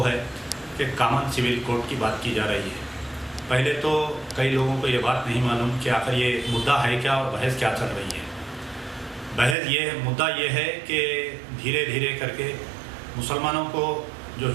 है कि कॉमन सिविल कोड की बात की जा रही है। पहले तो कई लोगों को ये बात नहीं मालूम कि आखिर ये मुद्दा है क्या और बहस क्या चल रही है। मुद्दा ये है कि धीरे धीरे करके मुसलमानों को, जो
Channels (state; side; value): drops out; left; at 9.6 s